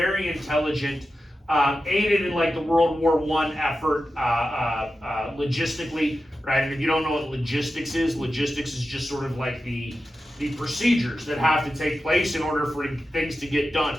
intelligent, aided in like the World War I effort logistically, right? And if you don't know what logistics is just sort of like the procedures that have to take place in order for things to get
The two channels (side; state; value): both; normal; correlation 0.92